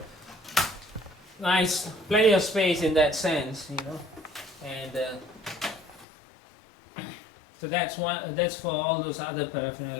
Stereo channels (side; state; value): right; drops out; at 6.1 s